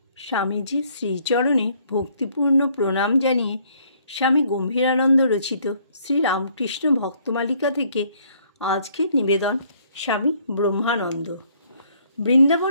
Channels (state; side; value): inverted; both; correlation -0.64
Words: স্বামীজির শ্রীচরণে ভক্তিপূর্ণ প্রণাম জানিয়ে স্বামী গম্ভীরানন্দ রচিত শ্রীরামকৃষ্ণ ভক্তমালিকা থেকে আজকের নিবেদন স্বামী ব্রহ্মানন্দ।